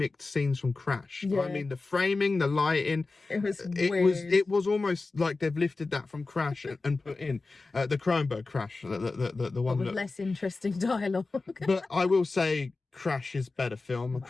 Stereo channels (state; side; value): quieter; right; 3.7 dB